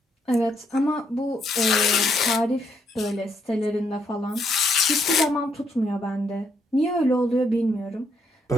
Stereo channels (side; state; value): both; normal; correlation 0.74